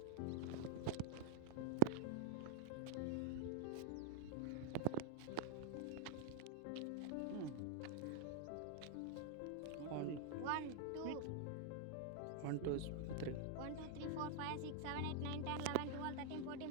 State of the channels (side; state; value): both; different; correlation 0.00